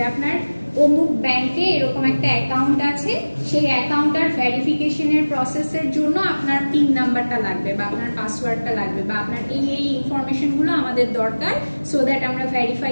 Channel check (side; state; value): both; inverted; correlation -1.00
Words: আপনার অমুক ব্যাংকে এরকম একটা অ্যাকাউন্ট আছে, সেই অ্যাকাউন্টটার ভেরিফিকেশনের প্রসেসের জন্য আপনার পিন নাম্বারটা লাগবে বা আপনার পাসওয়ার্ডটা লাগবে বা আপনার এই ইনফরমেশনগুলো আমাদের দরকার, সো দ্যাট আমরা ভেরিফাই